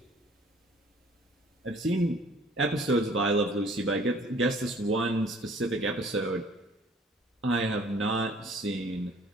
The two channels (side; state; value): both; normal; correlation 0.55